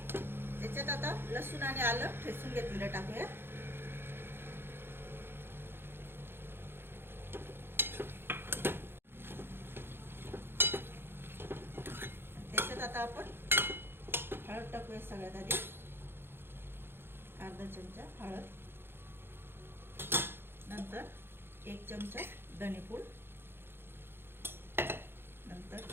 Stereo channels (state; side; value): late; left; 0.11 ms